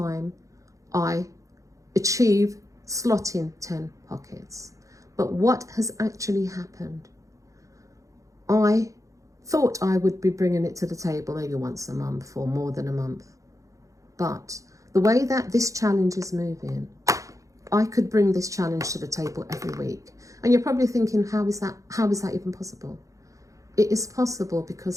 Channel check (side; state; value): left; late; 0.16 ms